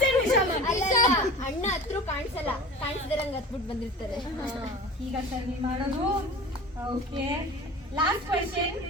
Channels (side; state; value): both; normal; correlation 0.38